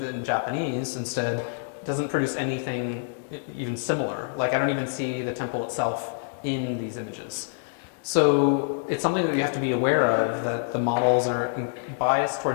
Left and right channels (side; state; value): right; silent; digital silence